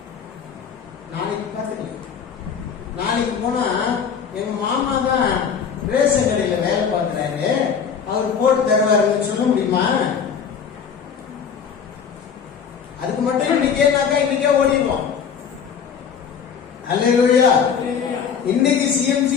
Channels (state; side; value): quieter; right; 7.0 dB